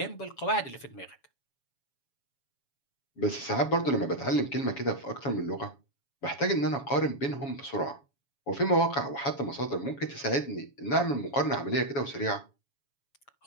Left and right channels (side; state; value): right; late; 7.1 ms